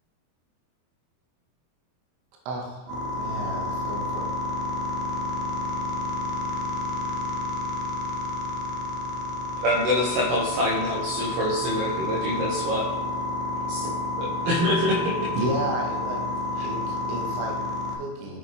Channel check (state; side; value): late; left; 24 ms